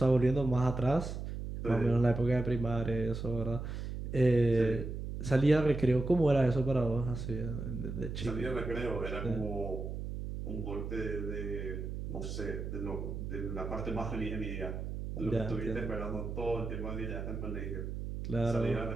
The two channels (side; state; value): right; noise; hum, 5 dB below the sound